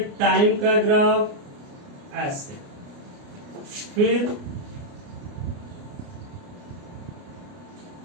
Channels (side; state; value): left; late; 29 ms